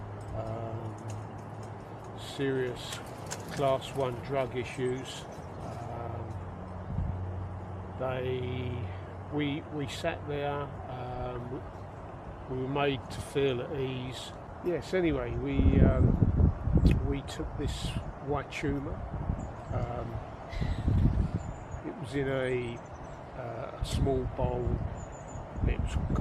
serious class 1 drug issues. We sat there, we were made to feel at ease. Yes, anyway, we took this huachuma. It was in a small bowl. It was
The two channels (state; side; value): identical; both; correlation 1.00